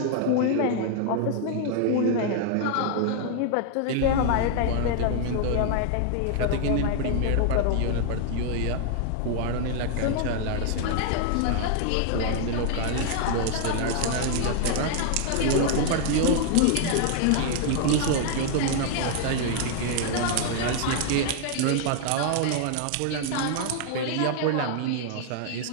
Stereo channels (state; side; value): different; both; correlation 0.00